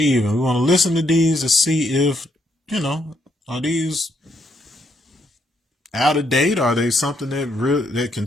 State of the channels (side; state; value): both; normal; correlation 0.75